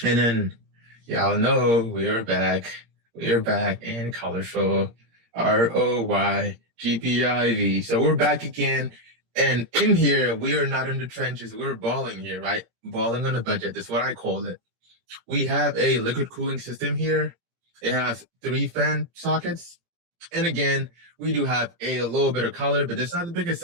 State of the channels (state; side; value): late; left; 17 ms